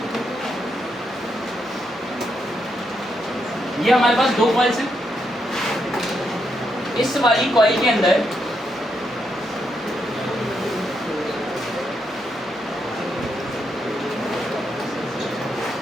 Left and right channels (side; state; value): both; normal; correlation 0.80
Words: ये हमारे पास दो कॉइल्स हैं। इस वाली कॉइल के अंदर